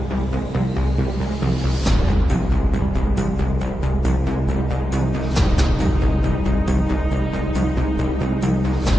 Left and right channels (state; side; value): normal; both; correlation 0.90